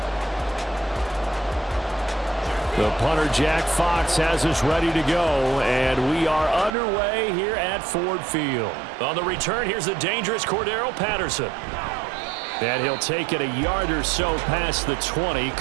The punter, Jack Fox, has us ready to go, and we are underway here at Ford Field. On the return, here's the dangerous Cordero Patterson. And he'll take it a yard or so past the 20,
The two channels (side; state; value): left; drops out; at 6.8 s